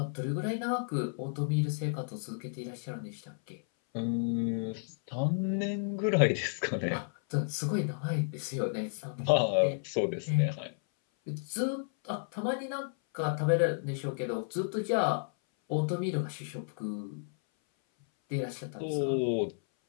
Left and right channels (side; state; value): right; silent; 56 dB below the other